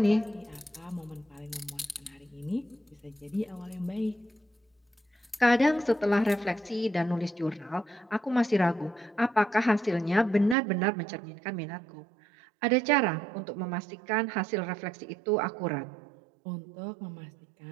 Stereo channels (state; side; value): drops out; left; at 10.6 s